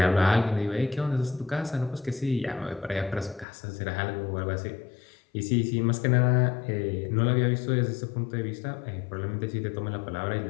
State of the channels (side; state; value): right; drops out; at 3.5 s